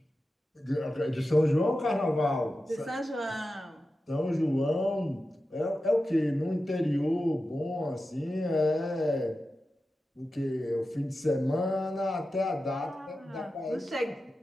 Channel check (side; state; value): both; normal; correlation 0.92